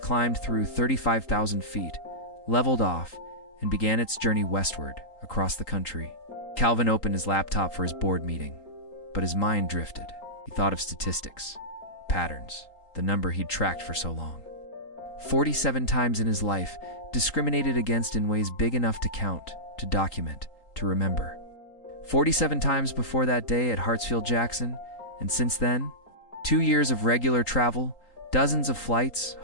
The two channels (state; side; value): late; right; 3.8 ms